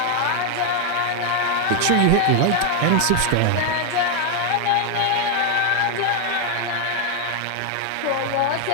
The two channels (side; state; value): both; different; correlation 0.00